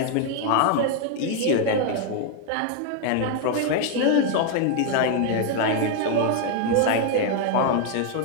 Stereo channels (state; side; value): different; both; correlation 0.01